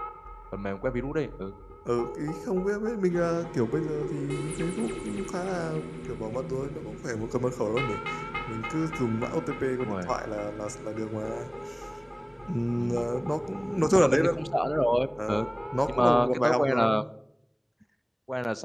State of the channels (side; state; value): both; identical; correlation 1.00